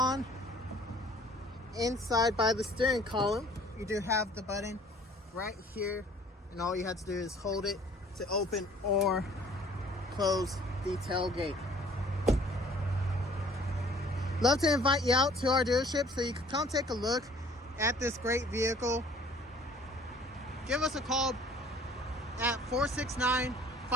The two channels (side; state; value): both; normal; correlation 0.54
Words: inside by the steering column. You do have the button right here, and all you have to do is hold it to open or close the tailgate. Love to invite you out to our dealership so you can come take a look at this great vehicle. Give us a call at